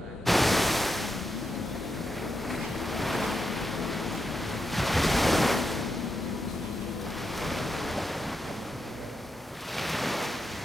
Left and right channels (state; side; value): normal; both; correlation 0.85